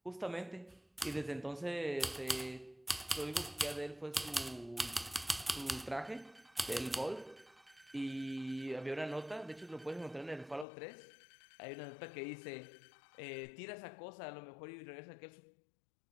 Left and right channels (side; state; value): right; drops out; at 10.7 s